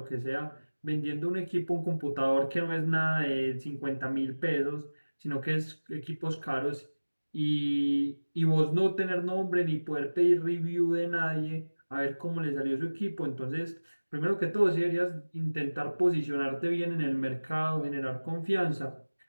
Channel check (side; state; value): both; inverted; correlation -1.00